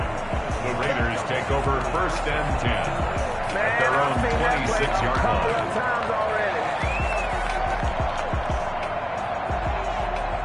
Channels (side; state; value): both; identical; correlation 1.00